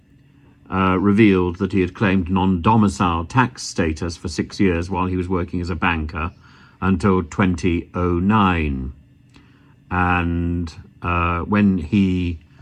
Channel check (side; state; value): both; identical; correlation 1.00